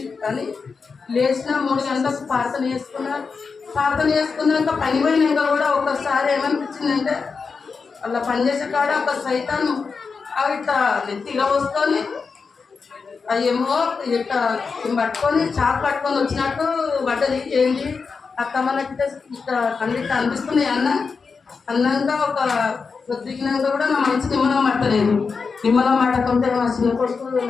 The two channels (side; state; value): right; quieter; 5.0 dB